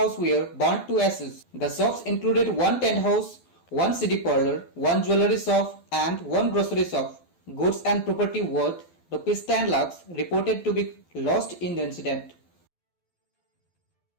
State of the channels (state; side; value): late; right; 12 ms